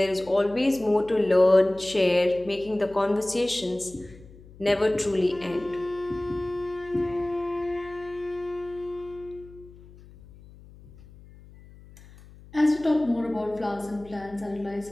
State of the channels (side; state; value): left; noise; hum, 21 dB below the sound